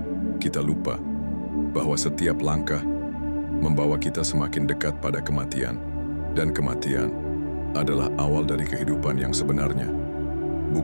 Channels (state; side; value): inverted; both; correlation -1.00